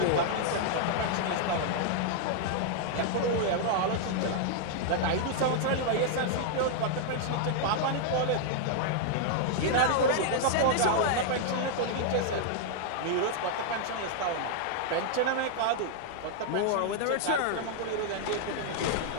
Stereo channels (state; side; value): different; both; correlation -0.01